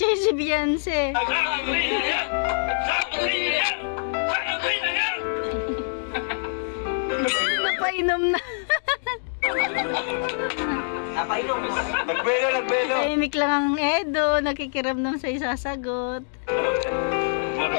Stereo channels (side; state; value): right; silent; digital silence